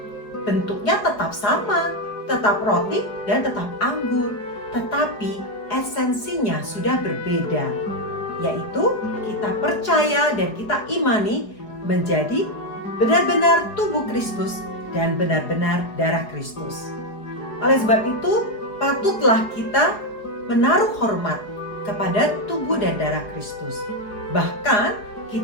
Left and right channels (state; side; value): late; right; 4.8 ms